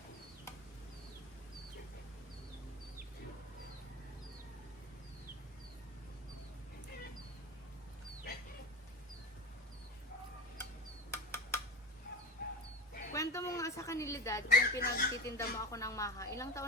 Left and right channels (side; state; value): both; normal; correlation 0.27